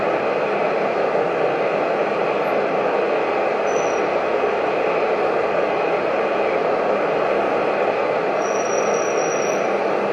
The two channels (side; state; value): both; identical; correlation 1.00